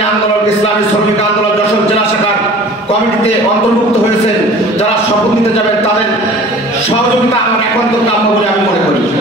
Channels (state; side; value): normal; both; correlation 0.45